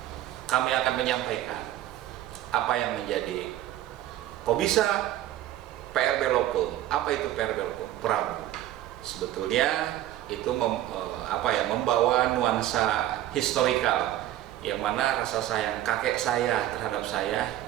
Kami akan menyampaikan apa yang menjadi kok bisa PRB Law Firm. Apa itu PRB Law Firm? Prabu. Sebetulnya itu membawa nuansa historikal, yang mana rasa sayang kakek saya terhadap saya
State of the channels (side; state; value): left; quieter; 13.4 dB